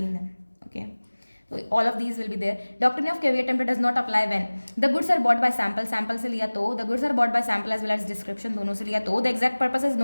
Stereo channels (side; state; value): both; inverted; correlation -1.00